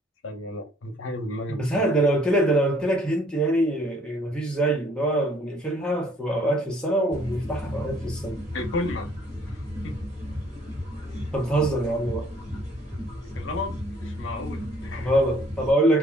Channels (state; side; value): normal; both; correlation 0.60